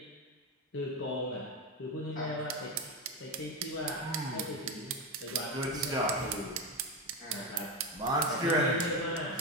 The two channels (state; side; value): normal; both; correlation 0.15